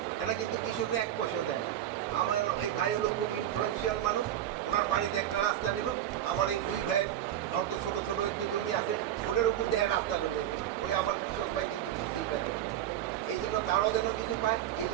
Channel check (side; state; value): left; quieter; 11.6 dB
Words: এরা কিন্তু কৃষকরা 1 পয়সাও দেয় না। আমার এই ভাই হলো খুব ইনফ্লুয়েন্সিয়াল মানুষ, ওনার বাড়িতে একটা রাস্তা নিব, আমার এই 2 ভাইয়ের অত ছোটো ছোটো একটু জমি আছে, ওটার উপর দেখে রাস্তাটা নিয়ে গেল, ওই আমার কৃষক ভাই কিন্তু কিছুই পাইল না। এই জন্য তারাও যেন কিছু পায়, এই